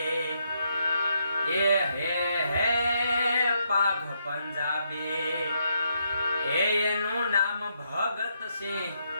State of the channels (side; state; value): both; inverted; correlation -0.78